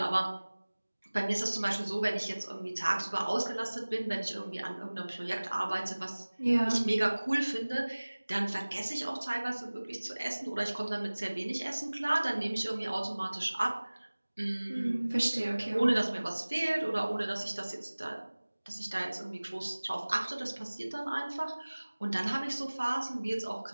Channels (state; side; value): inverted; both; correlation -1.00